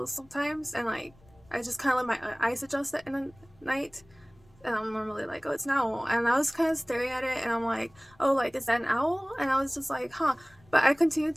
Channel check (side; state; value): left; noise; rumble, 28 dB below the sound